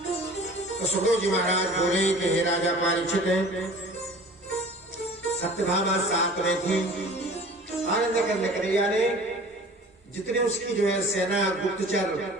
तो सुखदेव जी महाराज बोले कि हे राजा परीक्षित, सत्यभामा साथ में थी। आनंद कंद कन्हैया ने जितने उसकी जो है सेना गुप्तचर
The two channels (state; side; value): normal; both; correlation 0.44